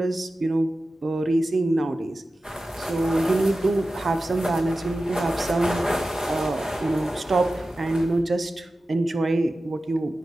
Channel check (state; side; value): normal; both; correlation 0.94